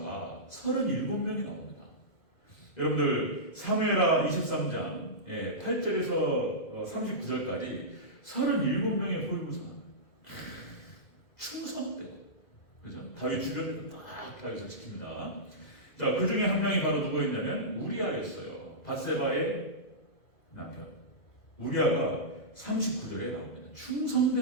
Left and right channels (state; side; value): late; right; 2.1 ms